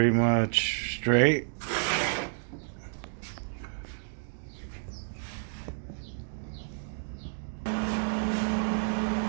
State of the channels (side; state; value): left; silent; digital silence